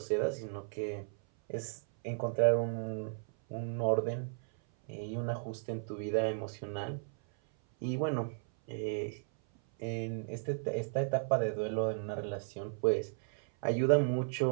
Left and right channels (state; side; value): silent; left; 55 dB below the other